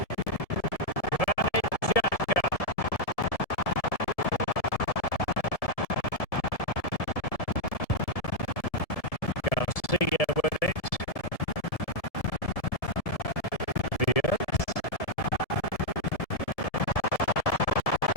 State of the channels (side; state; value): right; late; 1.7 ms